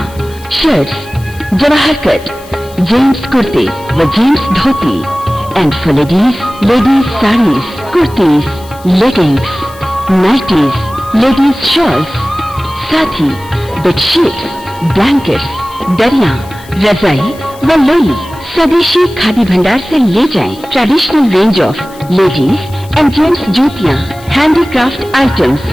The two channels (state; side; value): noise; left; hiss, 22 dB below the sound